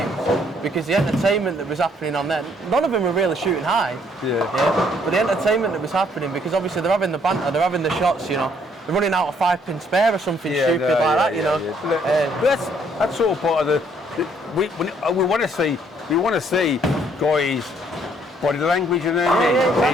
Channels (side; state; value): both; normal; correlation 0.66